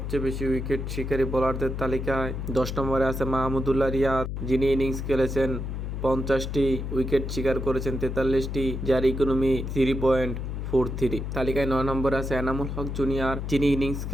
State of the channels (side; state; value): left; noise; hum, 4 dB below the sound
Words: বেশি উইকেট শিকারী বোলারদের তালিকায় 10 নম্বরে আছে মাহমুদুল্লাহ রিয়াদ, যিনি ইনিংস খেলেছেন 50টি, উইকেট শিকার করেছেন 43টি, যার ইকোনমি 3.43। তালিকায় 9 নম্বরে আছে এনামুল হক জুনিয়র, যিনি ইনিংস